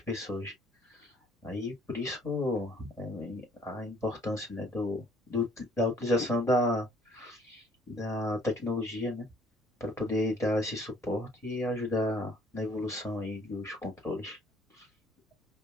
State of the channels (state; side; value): normal; both; correlation 0.59